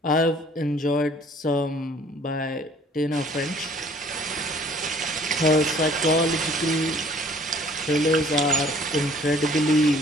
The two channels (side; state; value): both; normal; correlation 0.55